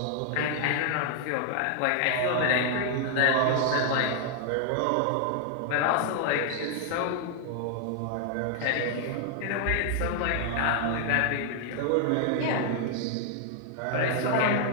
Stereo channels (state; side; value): different; both; correlation 0.00